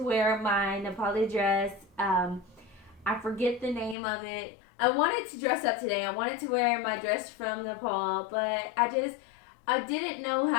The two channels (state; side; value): drops out; right; at 4.0 s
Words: wear my Nepali dress. I forget the name of it. I wanted to dress up today. I wanted to wear my dress from Nepal, but I didn't know